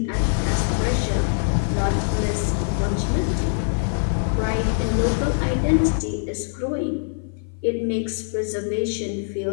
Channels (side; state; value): right; silent; 55 dB below the other